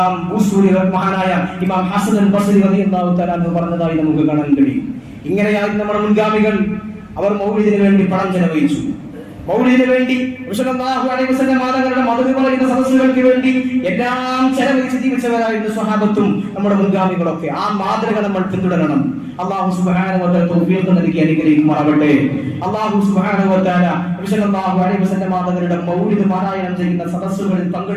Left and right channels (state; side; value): identical; both; correlation 1.00